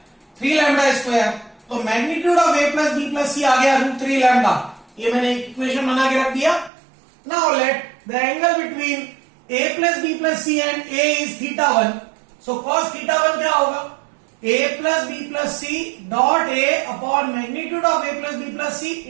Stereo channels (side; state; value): left; drops out; at 6.7 s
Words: 3 lambda square. तो magnitude of A plus B plus C आ गया रूट 3 लैम्डा. ये मैंने इक्वेशन बना के रख दिया. Now let the angle between A plus B plus C and A is theta 1. So cos theta 1 क्या होगा? a plus b plus c dot a upon magnitude of a plus b plus c